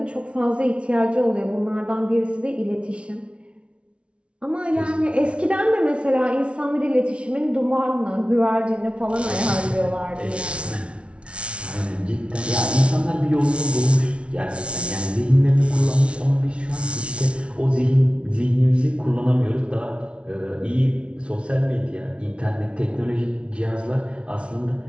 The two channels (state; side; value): late; left; 0.060 ms